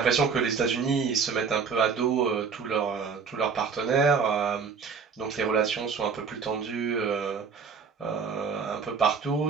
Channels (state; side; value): quieter; left; 5.6 dB